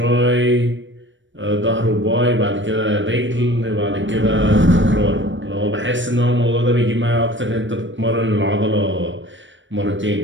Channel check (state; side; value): late; left; 0.55 ms